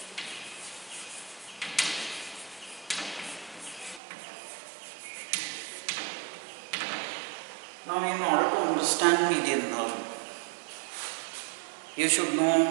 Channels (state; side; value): drops out; left; at 4.0 s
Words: Now, in order to understand median nerve, you should know